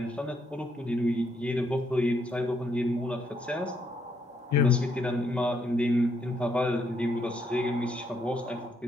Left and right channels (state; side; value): normal; both; correlation 0.74